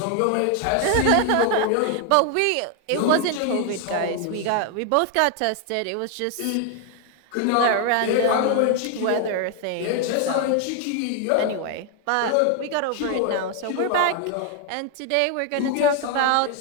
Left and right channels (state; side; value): different; both; correlation 0.01